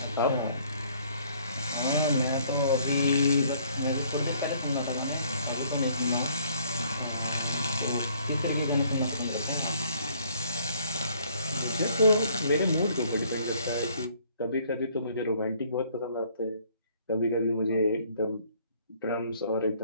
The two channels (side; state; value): both; inverted; correlation -0.62